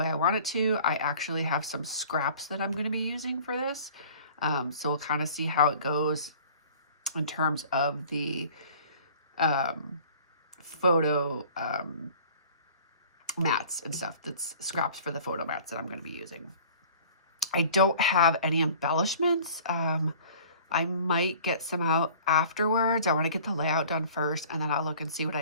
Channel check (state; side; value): inverted; both; correlation -0.48